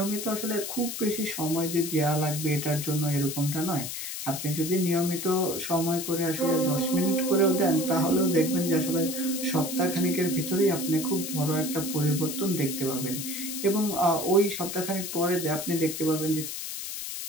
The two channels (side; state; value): left; noise; hiss, 6 dB below the sound